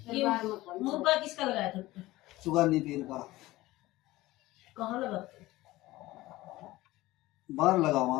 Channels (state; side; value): quieter; right; 18.1 dB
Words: मुर्गा किसका लगाया था? चुगानी पीर का कहाँ लगाते? बाहर लगा